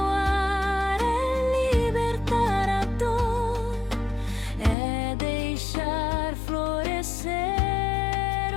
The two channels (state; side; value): drops out; right; at 4.8 s